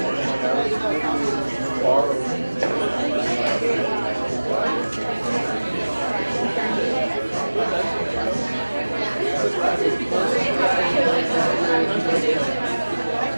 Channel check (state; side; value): inverted; both; correlation -1.00